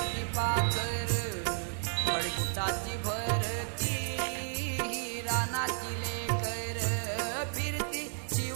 पाखर खडकुटाची भरती रानाची लेकर फिरती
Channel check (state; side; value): silent; left; digital silence